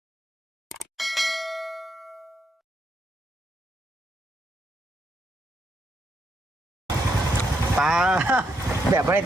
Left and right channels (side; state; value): both; normal; correlation 0.78